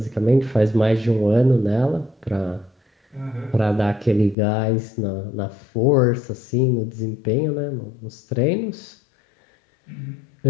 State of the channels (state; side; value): drops out; right; at 4.4 s